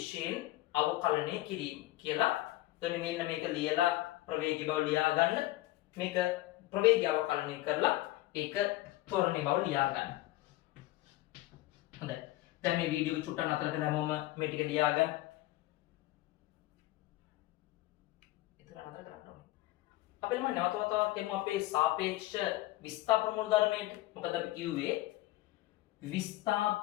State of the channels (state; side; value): quieter; right; 17.3 dB